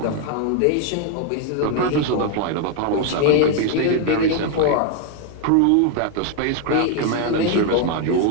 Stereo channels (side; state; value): both; different; correlation 0.00